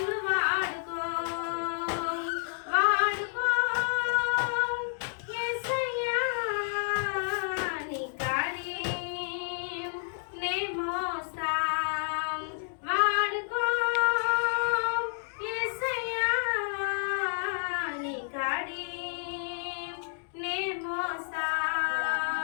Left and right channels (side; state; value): right; silent; digital silence